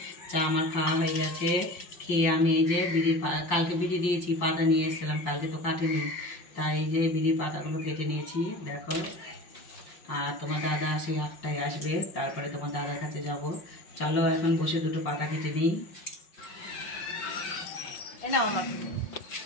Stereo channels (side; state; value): right; late; 5.9 ms